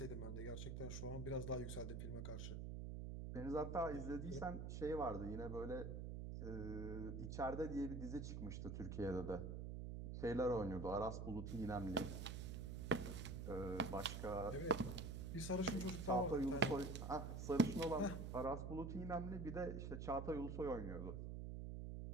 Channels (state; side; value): noise; right; hum, 4 dB below the sound